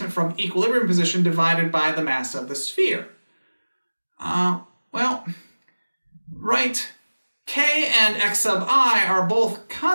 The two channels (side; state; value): both; inverted; correlation -1.00